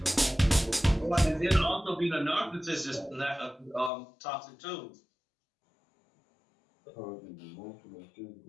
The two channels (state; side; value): drops out; right; at 3.9 s